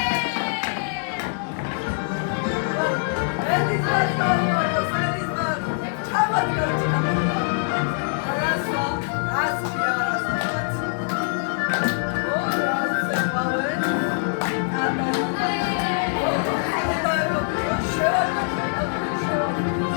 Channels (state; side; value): silent; right; digital silence